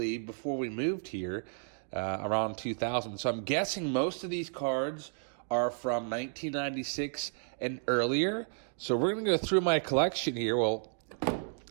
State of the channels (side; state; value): left; silent; digital silence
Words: before we moved here, around 2000. So I'm guessing most of these cards are from 1996 and earlier. So we're going to go through my collection here, well,